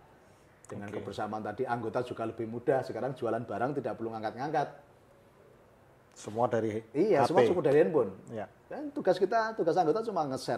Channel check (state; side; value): identical; both; correlation 1.00